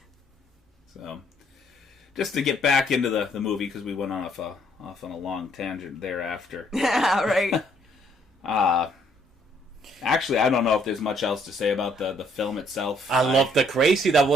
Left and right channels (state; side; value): normal; both; correlation 0.67